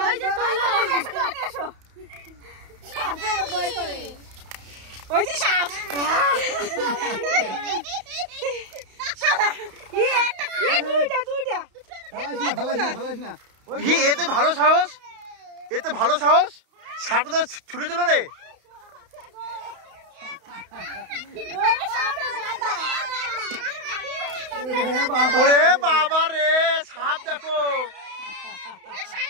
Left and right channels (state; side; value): late; left; 31 ms